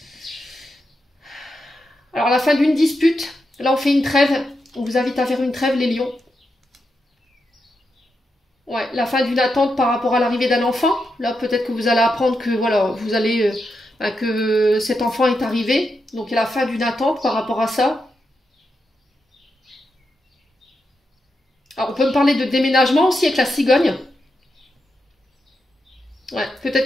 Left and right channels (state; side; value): normal; both; correlation 0.86